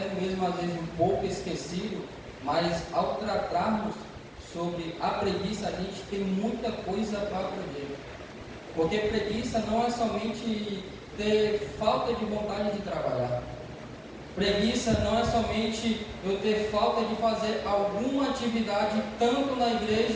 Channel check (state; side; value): identical; both; correlation 1.00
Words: mesmo às vezes um pouco esquecido, mas ao tratarmos sobre a preguiça, a gente tem muita coisa para aprender. Porque preguiça não é somente ter falta de vontade de trabalhar. Preguiça não é somente eu ter falta de fazer alguma atividade tanto na